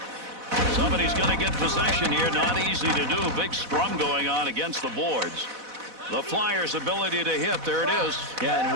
Somebody's going to get possession here. Not easy to do. Big scrum going on against the boards. The Flyers' ability to hit. There it is. Yeah, and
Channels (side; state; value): left; late; 4.0 ms